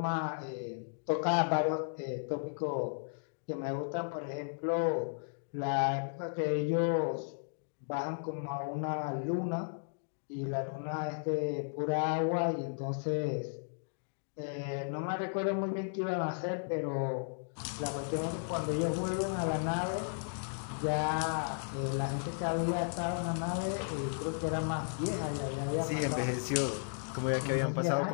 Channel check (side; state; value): right; silent; digital silence